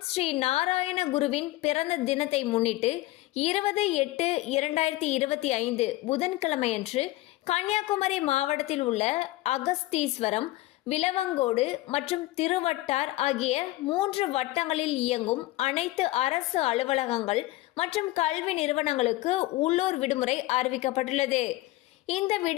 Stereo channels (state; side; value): quieter; right; 18.2 dB